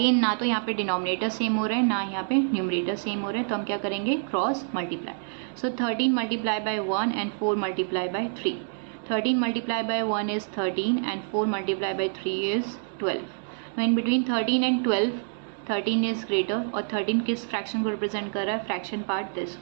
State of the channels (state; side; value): silent; left; digital silence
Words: ना तो यहाँ पे डिनोमिनेटर सेम हो रहे हैं ना यहाँ पे न्यूमरेटर सेम हो रहे हैं, तो हम क्या करेंगे, cross multiply. So 13 multiplied by 1 and 4 multiplied by 3. 13 multiplied by 1 is 13 and 4 multiplied by 3 is 12. Now in between 13 and 12 13 is greater और 13 किस फ्रैक्शन को रिप्रेजेंट कर रहा है, fraction part this